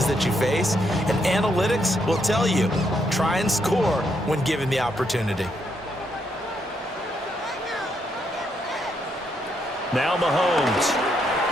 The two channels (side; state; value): both; normal; correlation 0.77